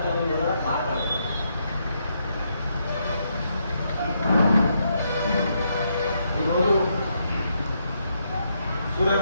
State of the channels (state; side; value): inverted; both; correlation -0.78